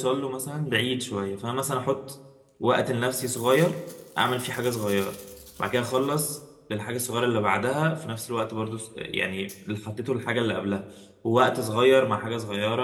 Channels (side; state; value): both; identical; correlation 1.00